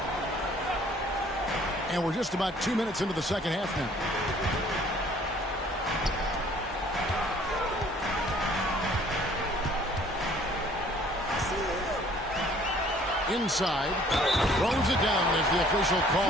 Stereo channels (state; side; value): normal; both; correlation 0.56